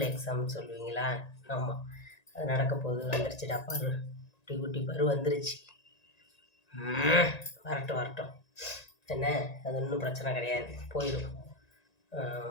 எக்ஸாம்னு சொல்லுவீங்களா? ஆமாம், அது நடக்க போகுது. வந்துருச்சுடா பரு, குட்டி குட்டி பரு வந்துருச்சு. வரட்டும் என்ன, அது ஒன்றும் பிரச்சனை கிடையாது, போயிடும்.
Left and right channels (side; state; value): right; late; 1.9 ms